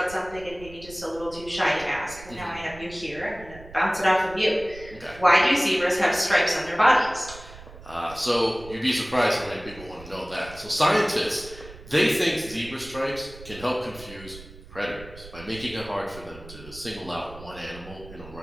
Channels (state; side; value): noise; right; rumble, 17 dB below the sound